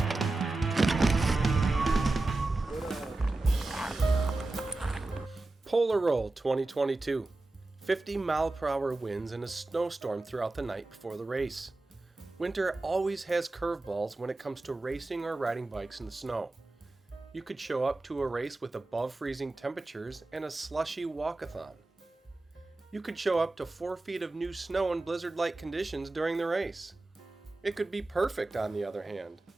Polar Roll 2022. 50-mile-per-hour winds and a snowstorm throughout the night before the race. Winter always has curveballs when it comes to racing or riding bikes in the snow. You could show up to a race with above freezing temperatures and a slushy walkathon. You could show up to 4 feet of new snow in blizzard-like conditions during the race. It could be perfect on the other hand.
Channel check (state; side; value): quieter; left; 3.0 dB